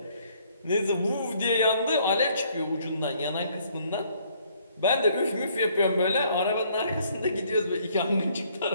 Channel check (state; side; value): inverted; both; correlation -0.64